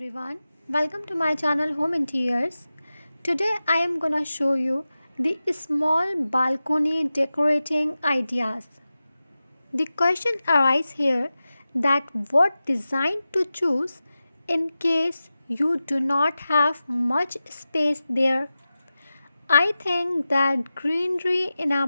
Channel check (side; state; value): both; inverted; correlation -0.94